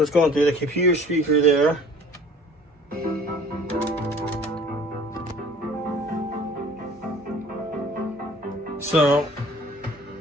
it's going through the computer speaker there. So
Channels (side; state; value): both; normal; correlation 0.49